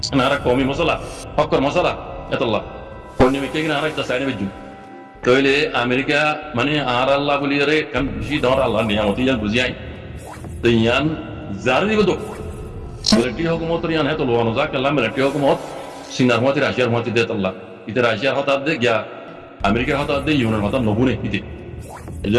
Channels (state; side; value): identical; both; correlation 1.00